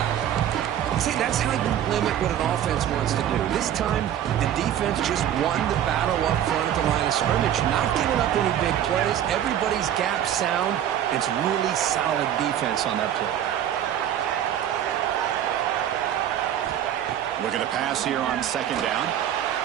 See, that's how you limit what an offense wants to do. This time, the defense just won the battle up front at the line of scrimmage, not giving up any big plays. Everybody's gap sound. It's really solid defense on that play. Looking to pass here on second down.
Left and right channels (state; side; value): quieter; left; 10.6 dB